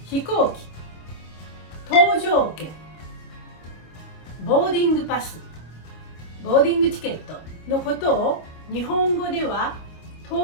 飛行機、搭乗券、ボーディングパス、ボーディングチケットのことを日本語では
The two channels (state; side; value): late; right; 25 ms